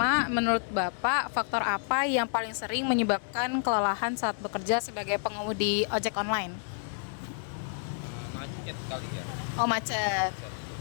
menurut Bapak, faktor apa yang paling sering menyebabkan kelelahan saat bekerja sebagai pengemudi ojek online? Macet kali ya. Oh, macet.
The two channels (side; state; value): right; silent; 58 dB below the other